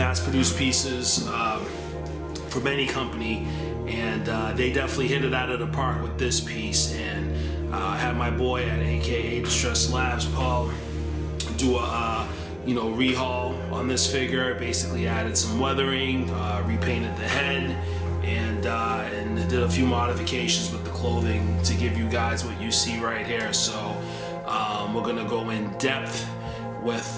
pieces from any company, and they definitely hit it out of the park with this piece. And I had my boy at aka Distress Labs, Paul, do a rehaul on this figure. Basically added some weathering, repainted the head, and did a few modifications with the clothing to give you guys what you see right here. So we're gonna go in depth with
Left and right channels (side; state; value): right; noise; hum, 25 dB below the sound